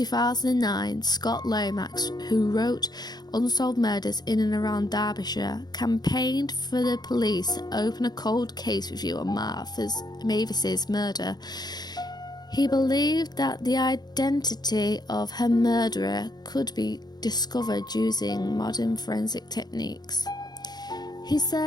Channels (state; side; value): late; right; 0.20 ms